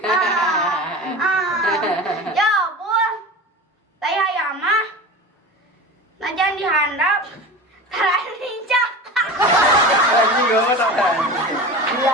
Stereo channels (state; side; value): normal; both; correlation 0.32